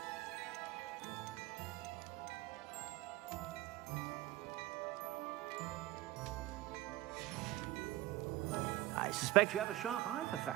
I suspect you have a sharp eye for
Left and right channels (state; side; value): quieter; left; 16.9 dB